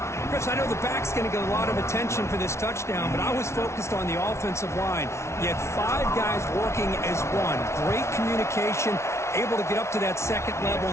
Chris, I know the back's going to get a lot of attention for this touchdown, but I was focused on the offensive line. You had 5 guys working as one. Great communication, able to get up to that second level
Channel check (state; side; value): late; right; 0.13 ms